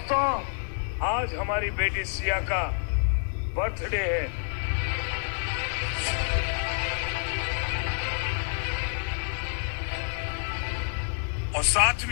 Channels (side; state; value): right; silent; digital silence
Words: आज हमारी बेटी सिया का बर्थडे है। और साथ